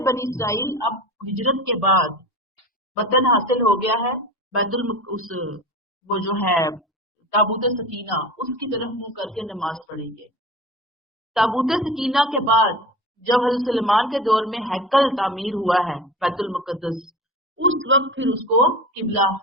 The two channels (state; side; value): normal; both; correlation 0.33